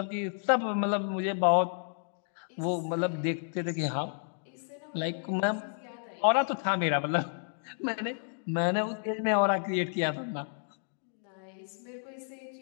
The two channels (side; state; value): right; silent; digital silence